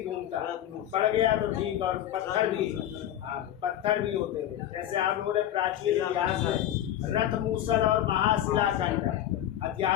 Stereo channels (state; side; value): quieter; right; 11.8 dB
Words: घूमता है, पड़ गया तो ठीक। और पत्थर भी, पत्थर भी होते थे। जैसे आप लोगों ने प्राचीन इतिहास में रथ मूसल और महाशिलाखंड